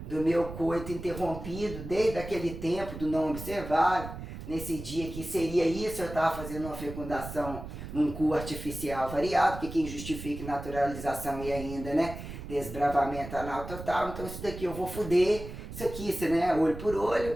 coito interrompido, desde aquele tempo do não observado. Nesse dia que seria isso, eu estava fazendo uma fecundação num cu artificial variado, que quem justifica naturalização e ainda, né, desbravamento anal total. Então isso daqui eu vou fuder, isso aqui, né, olho por olho,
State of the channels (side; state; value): right; noise; rumble, 10 dB below the sound